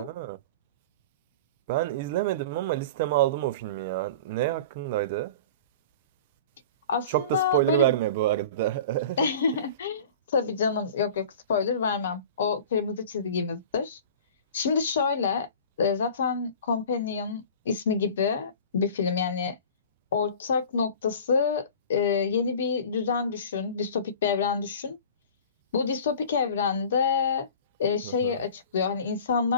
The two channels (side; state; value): both; inverted; correlation -0.39